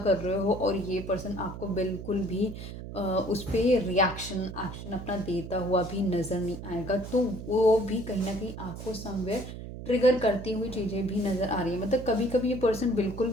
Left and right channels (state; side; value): noise; right; hum, 10 dB below the sound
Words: कर रहे हो और ये पर्सन आपको बिल्कुल भी उस पर रिएक्शन एक्शन अपना देता हुआ भी नज़र नहीं आएगा, तो वो भी कहीं ना कहीं आपको समवेयर ट्रिगर करती हुई चीज़ें भी नज़र आ रही है। मतलब कभी कभी ये पर्सन बिल्कुल